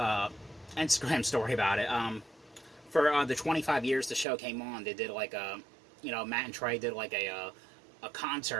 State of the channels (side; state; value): left; drops out; at 4.2 s